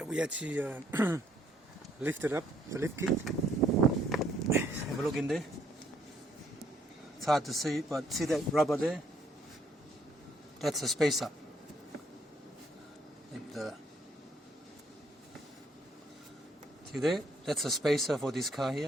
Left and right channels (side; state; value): both; normal; correlation 0.67